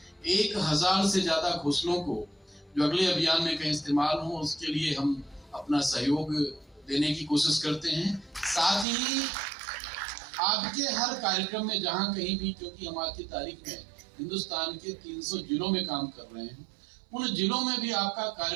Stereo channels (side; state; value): left; drops out; at 8.8 s